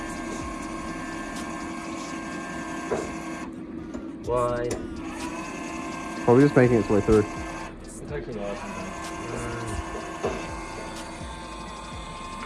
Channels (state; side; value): identical; both; correlation 1.00